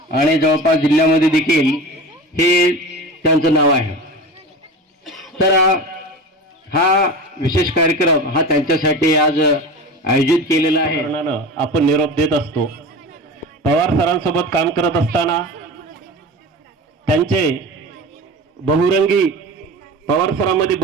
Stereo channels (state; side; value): normal; both; correlation 0.31